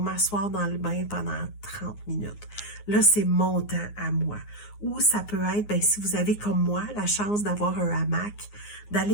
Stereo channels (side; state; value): right; late; 9.6 ms